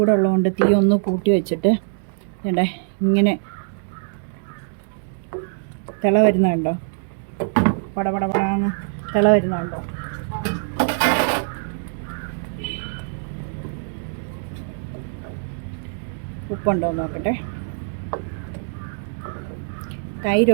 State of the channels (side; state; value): left; silent; digital silence